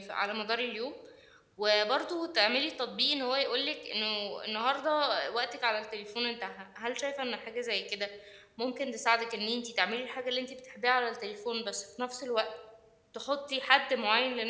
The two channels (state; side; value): identical; both; correlation 1.00